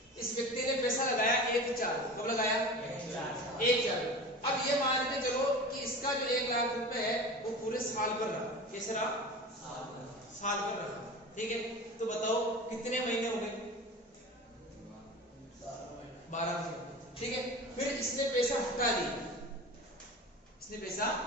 इस व्यक्ति ने पैसा लगाया 1/4, कब लगाया, 1/4। अब ये मान के चलो कि इसका जो 1 लाख रुपए है वो पूरे साल पर रहा, कैसे रहा, साल पर रहा, ठीक है। तो बताओ कितने महीने हो गए, 12 महीने, ठीक है। फिर इसने पैसा हटा दिया, इसने पैसा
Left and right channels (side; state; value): both; normal; correlation 0.33